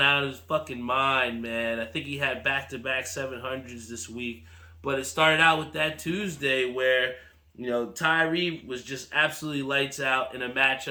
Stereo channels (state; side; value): identical; both; correlation 1.00